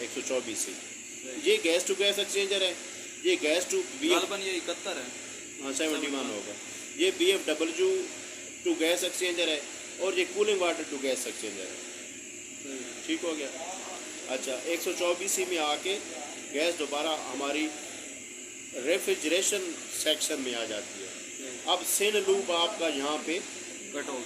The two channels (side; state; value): both; identical; correlation 1.00